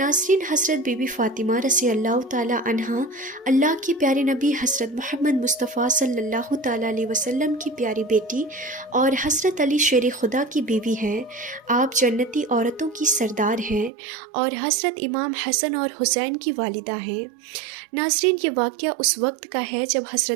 हज़रत बीबी फ़ातिमा रज़ी अल्लाह ताला अन्हा अल्लाह के प्यारे नबी हज़रत मोहम्मद मुस्तफ़ा सल्लल्लाहु ताला अलैहि वसल्लम की प्यारी बेटी और हज़रत अली शेर खुदा की बीवी हैं। आप जन्नती औरतों की सरदार हैं और हज़रत इमाम हसन और हुसैन की वालिदा हैं। नाज़रीन, ये वाक़या उस वक्त का है जब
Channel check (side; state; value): left; drops out; at 13.9 s